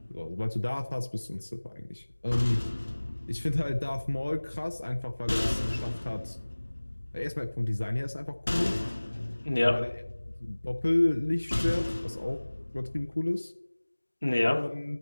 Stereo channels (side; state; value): both; inverted; correlation -1.00